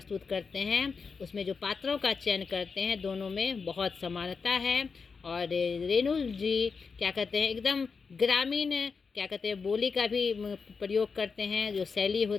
करते हैं, उसमें जो पात्रों का चयन करते हैं, दोनों में बहुत समानता है। और रेणु जी क्या कहते हैं, एकदम ग्रामीण क्या कहते हैं बोली का भी प्रयोग करते हैं। जो शैली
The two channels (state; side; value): quieter; right; 5.1 dB